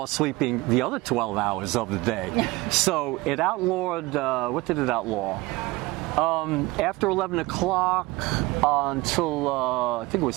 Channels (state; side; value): quieter; left; 21.2 dB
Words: sleeping the other 12 hours of the day. So it outlawed, what did it outlaw? After 11 o'clock until I think it was